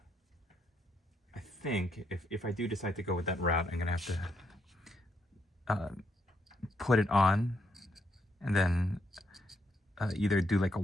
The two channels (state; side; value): normal; both; correlation 0.76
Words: I think if I do decide to go with that route, I'm gonna have to put it on and then either do like a